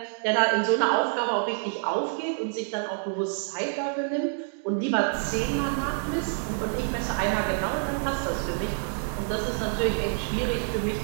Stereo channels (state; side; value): silent; left; digital silence